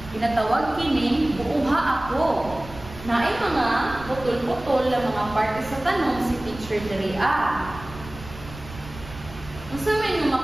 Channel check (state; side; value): noise; right; rumble, 15 dB below the sound